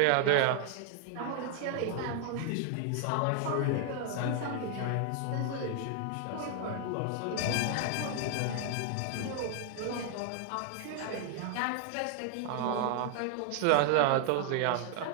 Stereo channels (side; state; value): both; different; correlation 0.00